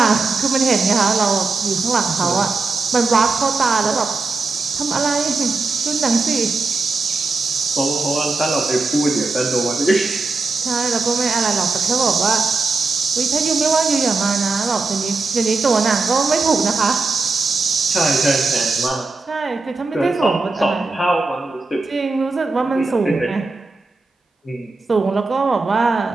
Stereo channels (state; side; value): quieter; left; 3.8 dB